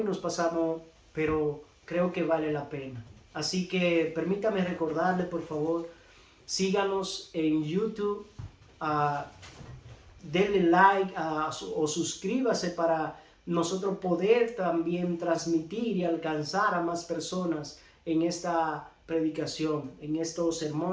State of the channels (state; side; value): identical; both; correlation 1.00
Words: nos pasamos, pero creo que vale la pena. Así que permítame recordarle, por favor, síganos en YouTube, denle like o suscríbase para nosotros poder también transmitir y alcanzar a más personas en esta predicación, en estos